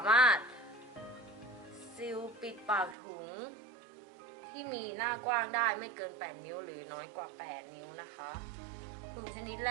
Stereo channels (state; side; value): drops out; left; at 3.0 s